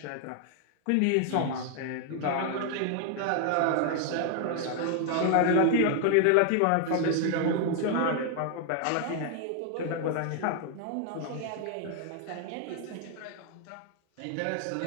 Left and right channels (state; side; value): different; both; correlation 0.00